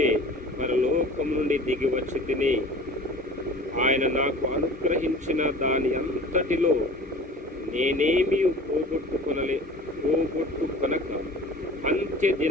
పరలోకం నుండి దిగి వచ్చి తిని. ఆయన నాకు అనుగ్రహించిన దాని అంతటిలో నేనేమీ పోగొట్టుకొనక అంత్య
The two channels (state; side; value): normal; both; correlation 0.42